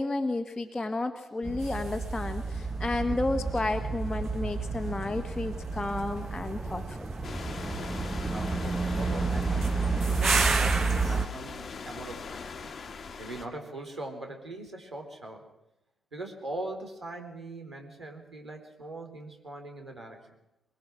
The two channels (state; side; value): normal; both; correlation 0.86